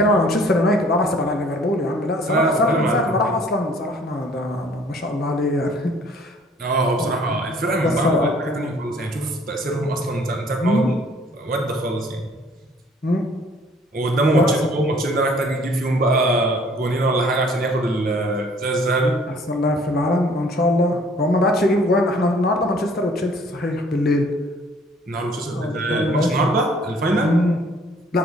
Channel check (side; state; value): both; normal; correlation 0.57